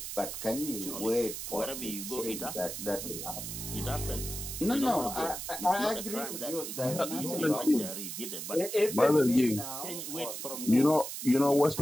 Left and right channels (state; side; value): noise; right; hiss, 7 dB below the sound